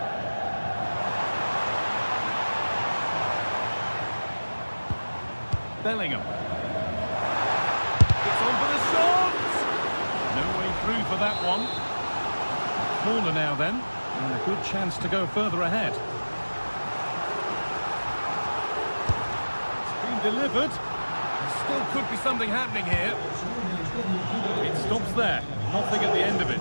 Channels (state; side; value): inverted; both; correlation -1.00